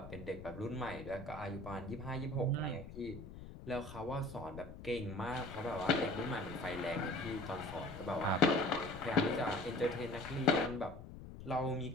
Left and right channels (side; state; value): left; noise; rumble, 12 dB below the sound